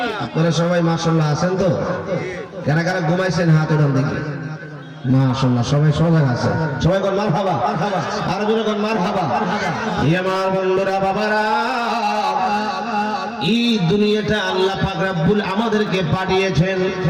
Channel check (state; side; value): identical; both; correlation 1.00